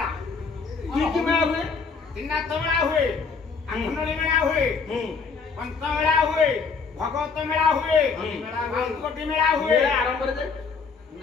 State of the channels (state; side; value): quieter; right; 5.1 dB